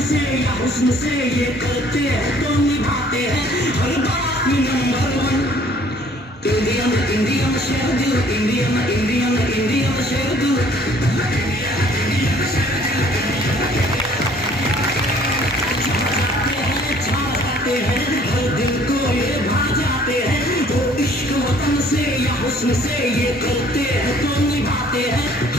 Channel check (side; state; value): both; normal; correlation 0.57